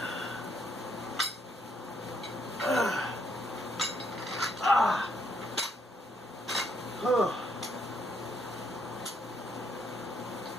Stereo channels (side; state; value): both; normal; correlation 0.73